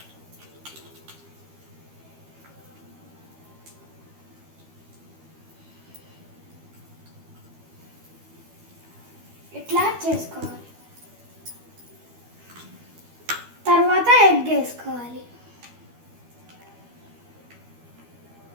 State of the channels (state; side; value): late; left; 12 ms